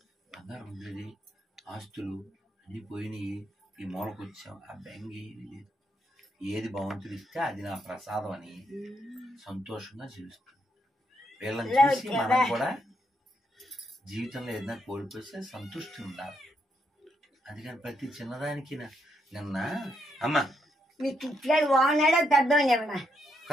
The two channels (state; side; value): normal; both; correlation 0.78